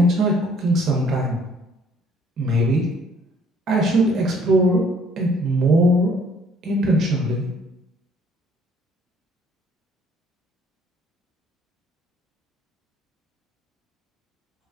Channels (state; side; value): normal; both; correlation 0.60